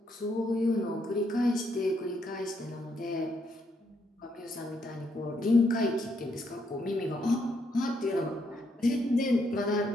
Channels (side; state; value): both; normal; correlation 0.75